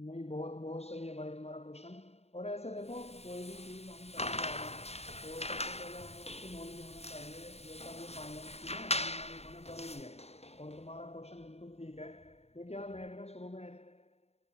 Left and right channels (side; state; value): right; late; 0.30 ms